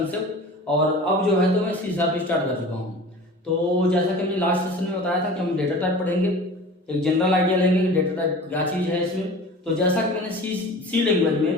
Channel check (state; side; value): normal; both; correlation 0.39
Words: और अब जो है तो मैं सी शार्प स्टार्ट कर चुका हूँ। तो जैसा कि हमने लास्ट सेशन में बताया था कि हम डेटा टाइप पढ़ेंगे, एक जनरल आइडिया लेंगे कि डेटा टाइप क्या चीज़ है इसमें। तो जैसा कि मैंने सी लैंग्वेज